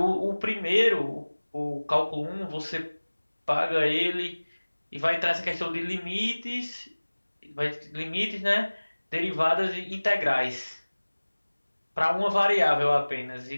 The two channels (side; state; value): both; inverted; correlation -1.00